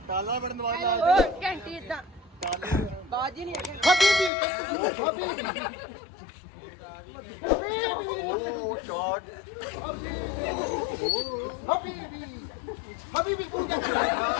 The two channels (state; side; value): drops out; right; at 4.3 s